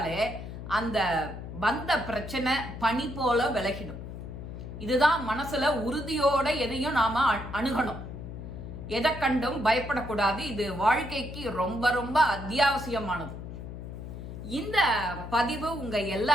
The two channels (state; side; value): noise; left; hum, 9 dB below the sound